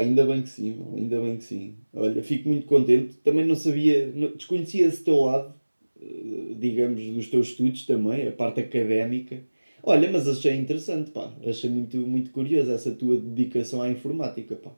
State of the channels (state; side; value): inverted; both; correlation -1.00